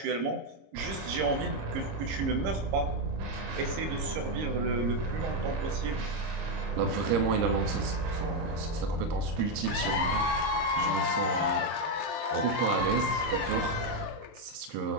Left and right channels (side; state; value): left; late; 26 ms